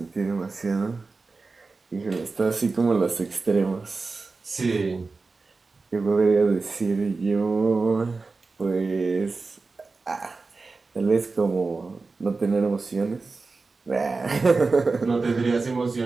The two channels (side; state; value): left; quieter; 4.0 dB